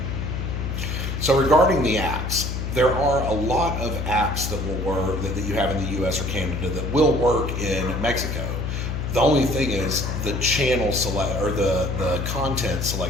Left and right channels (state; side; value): noise; left; hum, 3 dB below the sound